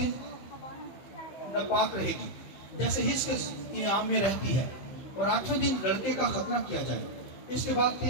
नापाक रहेगी, जैसे हिज के इयाम में रहती है, और 8वें दिन लड़के का खतना किया जाए। इसके बाद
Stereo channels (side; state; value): right; late; 15 ms